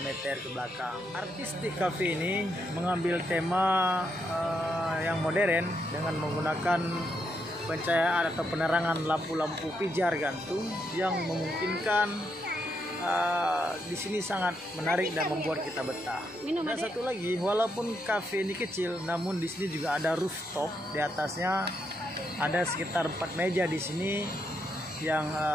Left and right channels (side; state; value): both; normal; correlation 0.79